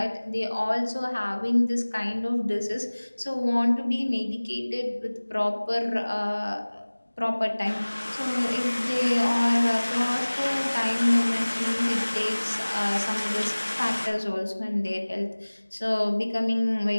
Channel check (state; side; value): inverted; both; correlation -1.00